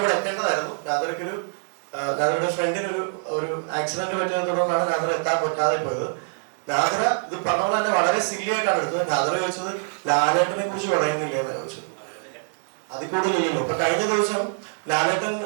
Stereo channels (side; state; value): left; silent; digital silence